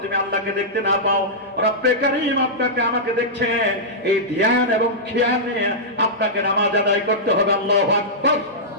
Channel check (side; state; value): both; normal; correlation -0.12